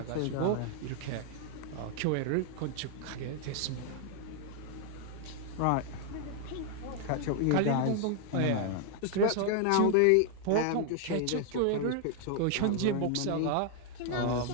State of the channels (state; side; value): different; both; correlation 0.00